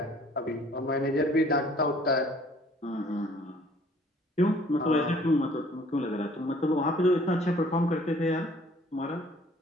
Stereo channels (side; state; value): both; normal; correlation 0.56